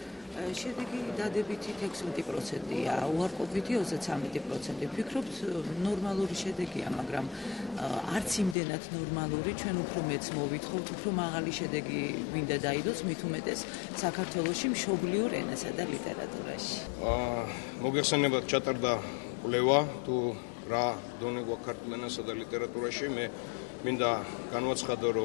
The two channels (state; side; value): drops out; right; at 8.6 s